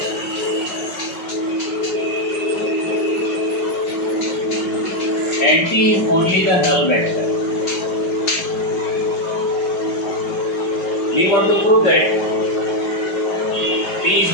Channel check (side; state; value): right; late; 5.3 ms